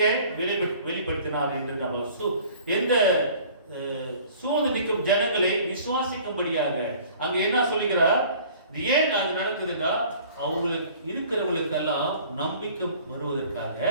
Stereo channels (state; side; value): inverted; both; correlation -0.50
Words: வெளிப்படுத்தினார் என்று நம்ம எந்த சூழ்ந்து நிற்கும் ஜனங்களை விசுவாசிக்கும்படியாக அங்க என்ன சொல்லுகிறார். ஏன் அது நடக்குதுன்னா, அவங்களுக்கு இருக்கிறவங்களுக்கெல்லாம் நம்பிக்கை வருவதற்காக,